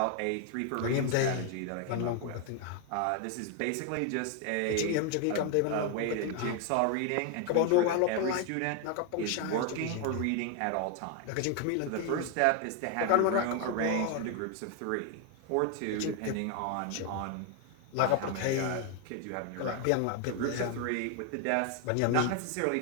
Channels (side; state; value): both; different; correlation 0.01